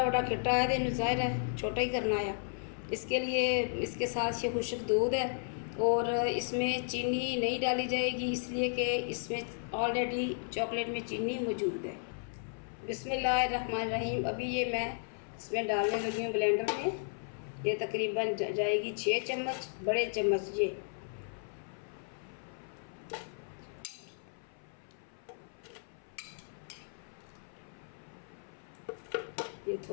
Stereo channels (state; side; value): silent; right; 55 dB below the other